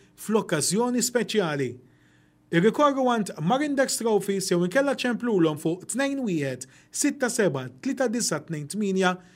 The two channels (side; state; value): both; identical; correlation 1.00